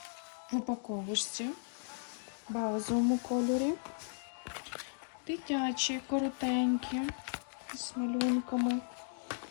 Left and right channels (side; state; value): right; silent; digital silence